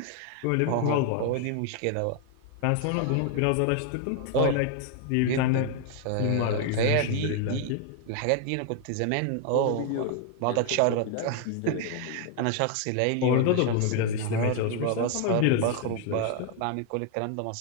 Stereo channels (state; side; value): different; both; correlation 0.00